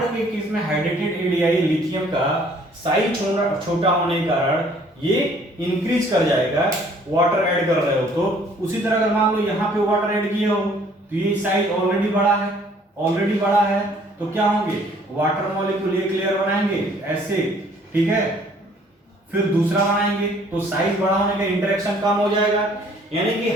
के केस में हाइड्रेटेड रेडियाई लिथियम का साइज छोटा होने के कारण ये इंक्रीज कर जाएगा, वाटर ऐड कर रहे हो तो। उसी तरह अगर मान लो यहाँ पे वाटर ऐड किए हो तो ये साइज ऑलरेडी बड़ा है, तो क्या होंगे, वाटर मॉलिक्यूल एक लेयर बनाएंगे ऐसे, ठीक है, फिर दूसरा बनाएंगे तो साइज बड़ा होने का इंटरेक्शन कम हो जाएगा। यानी कि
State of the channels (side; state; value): both; normal; correlation 0.58